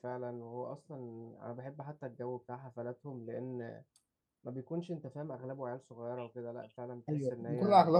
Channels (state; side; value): identical; both; correlation 1.00